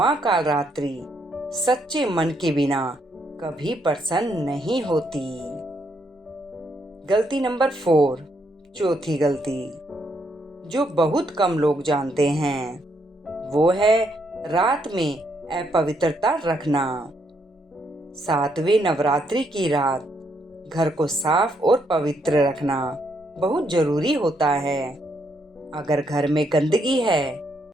कालरात्रि सच्चे मन के बिना कभी प्रसन्न नहीं होती। गलती नंबर 4। चौथी गलती जो बहुत कम लोग जानते हैं वो है रात में अपवित्रता रखना। 7वें नवरात्रि की रात घर को साफ और पवित्र रखना बहुत जरूरी होता है। अगर घर में गंदगी है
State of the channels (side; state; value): both; normal; correlation 0.75